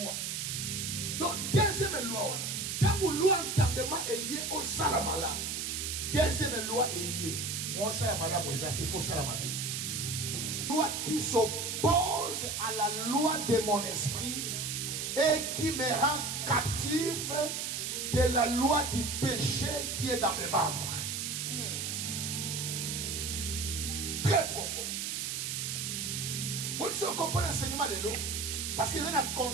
Donc deuxième loi, quand vous loi entendement est au salamala. Deuxième loi est moi salamala moi ça il faut salamala. Loi qui s'oppose à la loi de mon esprit et qui me rend captif de la loi du péché qui est dans mes membres. Très profond. Moi je comprends l'enseignement de l'eau parce que dans le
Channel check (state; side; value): noise; right; hiss, 2 dB below the sound